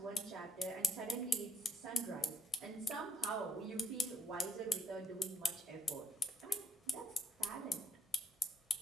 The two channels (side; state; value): both; normal; correlation 0.72